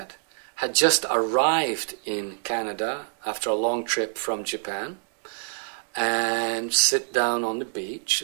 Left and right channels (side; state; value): left; silent; digital silence